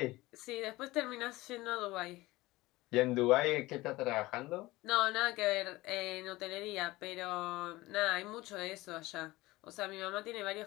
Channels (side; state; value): right; quieter; 19.4 dB